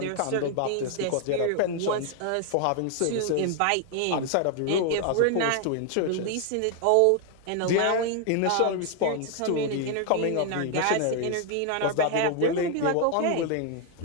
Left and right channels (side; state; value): both; different; correlation 0.00